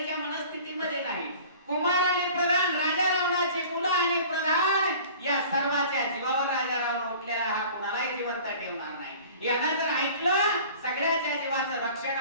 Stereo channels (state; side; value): inverted; both; correlation -0.45